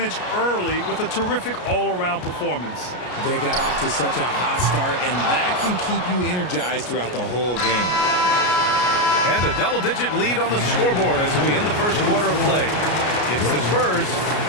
early with a terrific all-around performance. They got off to such a hot start, and that can keep you energized throughout the whole game. And a double-digit lead on the scoreboard as we end the first quarter of play. It's the Spurs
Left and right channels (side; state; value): right; late; 33 ms